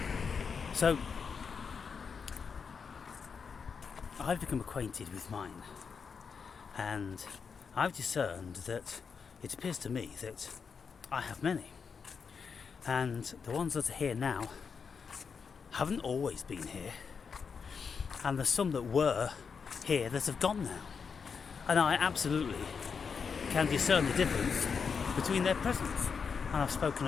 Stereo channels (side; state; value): right; quieter; 5.9 dB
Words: so I've become acquainted with mine, and I've discerned that it appears to me that I have many, and the ones that are here now haven't always been here, and there's some that were here that have gone now, and I absolutely can discern the difference between their presence, and I've spoken